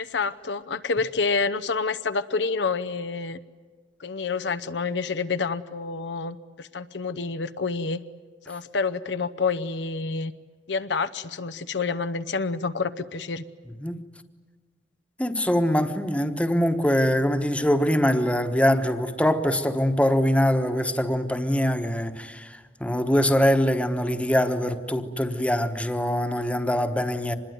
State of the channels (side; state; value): both; normal; correlation 0.66